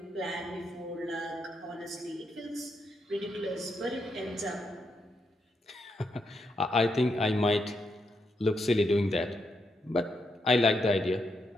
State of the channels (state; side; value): normal; both; correlation 0.81